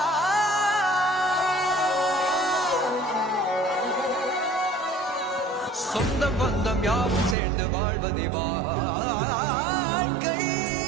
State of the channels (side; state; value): left; drops out; at 7.4 s